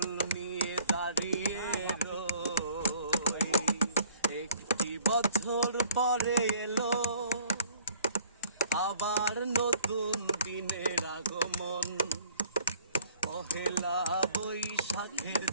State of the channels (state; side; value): inverted; both; correlation -0.53